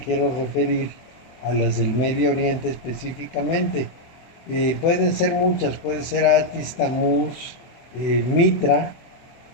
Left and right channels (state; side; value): late; right; 23 ms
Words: referir a las del Medio Oriente específicamente. Pueden ser muchas, puede ser Atis, Tamuz, Mitra,